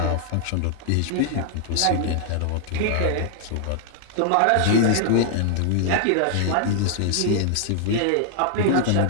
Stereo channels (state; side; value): different; both; correlation 0.00